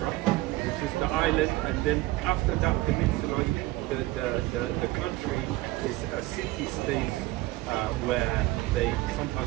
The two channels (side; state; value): left; quieter; 18.8 dB